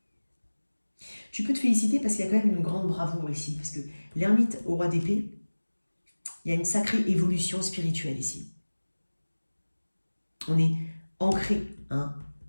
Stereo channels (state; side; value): inverted; both; correlation -1.00